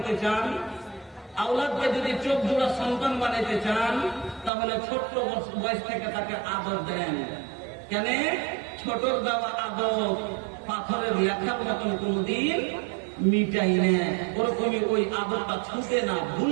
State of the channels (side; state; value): left; drops out; at 4.5 s